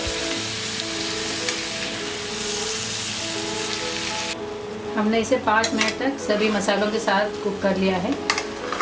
हमने इसे 5 मिनट तक सभी मसालों के साथ कुक कर लिया है।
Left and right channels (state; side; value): identical; both; correlation 1.00